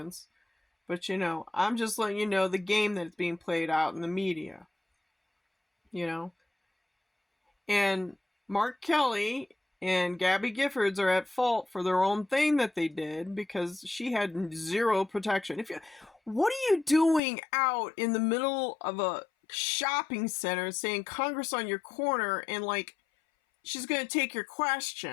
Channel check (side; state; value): right; drops out; at 17.2 s